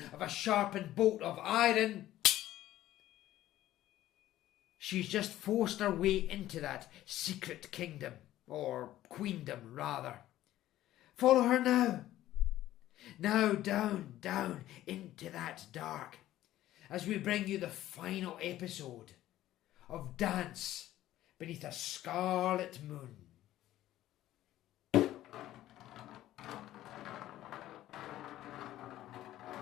of a sharpened bolt of iron, she's just forced her way into that secret kingdom, or queendom rather. Follow her now. Now down into that dark, as we bring you the final episode of Dance Beneath a Scarlet Moon.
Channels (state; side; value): quieter; right; 14.1 dB